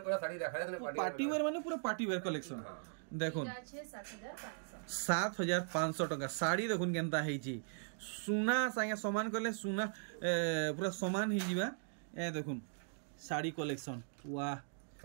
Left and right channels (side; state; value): left; silent; digital silence